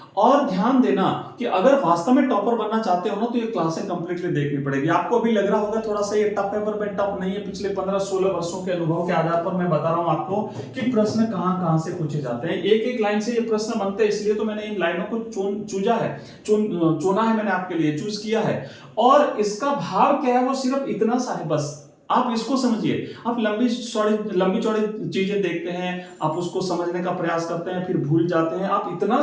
और ध्यान देना कि अगर वास्तव में टॉपर बनना चाहते हो ना, तो ये क्लासें कंप्लीटली देखनी पड़ेगी। आपको अभी लग रहा होगा थोड़ा सा ये टफ है, पर मैं टफ नहीं है। पिछले 15-16 वर्षों के अनुभव के आधार पर मैं बता रहा हूं आपको कि प्रश्न कहां से पूछे जाते हैं। एक एक लाइन से ये प्रश्न बनते हैं, इसलिए तो मैंने इन लाइनों को चुना है, मैंने आपके लिए चूज किया है। और इसका भाव क्या है वो सिर्फ इतना सा है, बस आप इसको समझिए। आप लंबी चौड़ी चीजें देखते हैं, आप उसको समझने का प्रयास करते हैं, फिर भूल जाते हैं। आप इतना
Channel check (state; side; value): identical; both; correlation 1.00